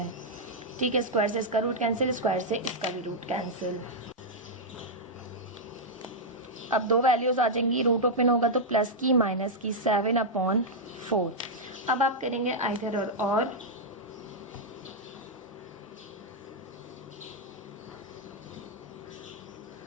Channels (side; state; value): both; normal; correlation -0.05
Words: ठीक है, स्क्वायर से इसका रूट कैंसिल, स्क्वायर से इसका भी रूट कैंसिल। अब दो वैल्यूज आ जाएंगी, रूट ओपन होगा तो प्लस की माइनस की 7/4। अब आप करेंगे आइदर और